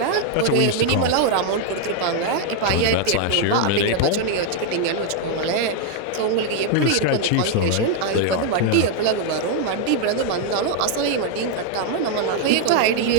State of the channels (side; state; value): both; different; correlation 0.00